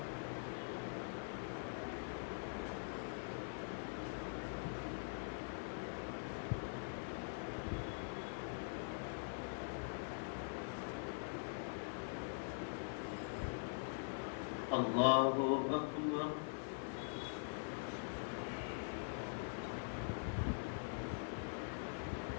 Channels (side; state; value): right; silent; digital silence